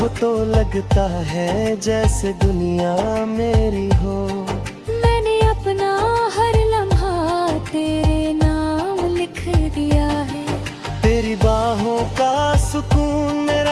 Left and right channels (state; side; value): identical; both; correlation 1.00